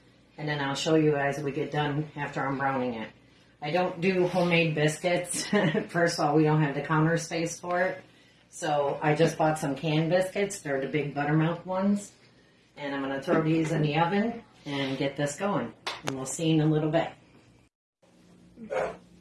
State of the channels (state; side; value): identical; both; correlation 1.00